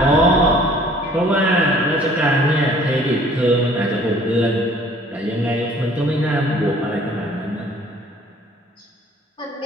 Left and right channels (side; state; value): both; normal; correlation 0.54